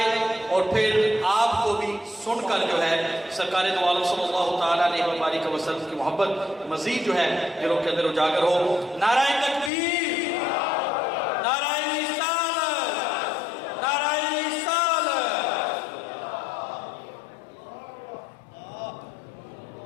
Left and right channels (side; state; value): right; drops out; at 9.7 s